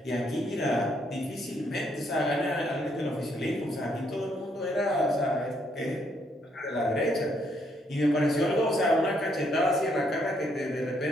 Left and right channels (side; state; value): both; normal; correlation 0.72